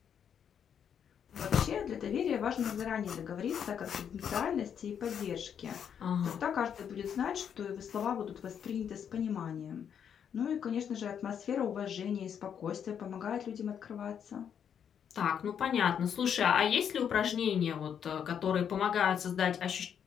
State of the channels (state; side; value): quieter; right; 8.2 dB